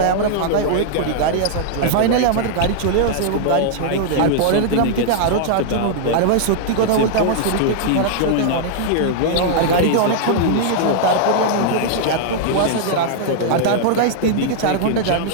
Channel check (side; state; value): both; different; correlation -0.01